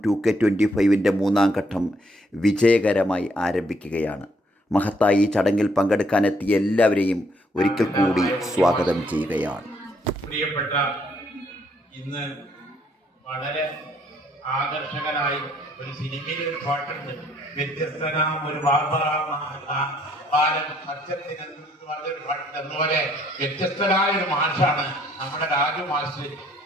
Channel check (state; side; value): normal; both; correlation 0.67